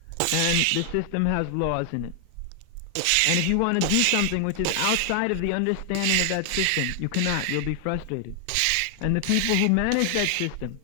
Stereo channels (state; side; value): different; both; correlation 0.00